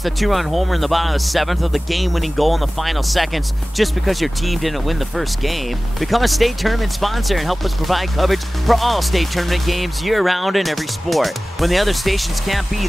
the two-run homer in the bottom of the 7th or the game-winning goal in the final seconds just because your team didn't win the first game. Become a state tournament sponsor and help us provide coverage for all state tournament games year-round in every sport. When the other stations can't be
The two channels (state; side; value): normal; both; correlation 0.98